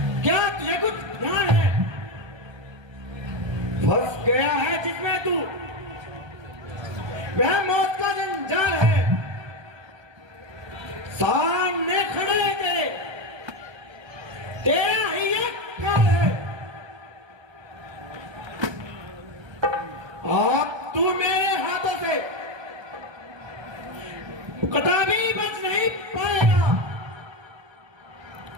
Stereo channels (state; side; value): late; left; 1.3 ms